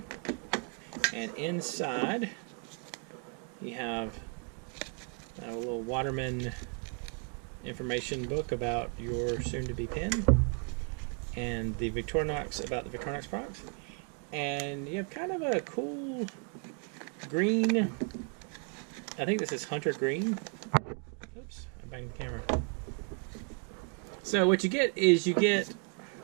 And inside you have a little Waterman information book about your soon-to-be pen, and the Victorinox, about the Victorinox products. And you have kind of a cool green, I think this is hunter green. Oops, I banged the camera. So what you get is you get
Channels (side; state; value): left; quieter; 38.9 dB